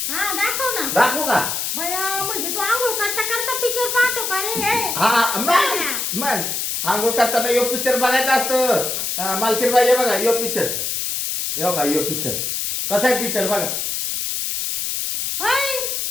हा दाखव ना. दाखवू का. बया म्हणजे तू आंघोळ करता करता पिक्चर पाहतो का रे. हा मग आंघोळ करताना यो पिक्चर बघायचा असतो. मालकीन बाई बघा यो पिक्चर. यो बघा यो पिक्चर कसा आहे पिक्चर बघा. होय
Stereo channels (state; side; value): noise; left; hiss, 2 dB below the sound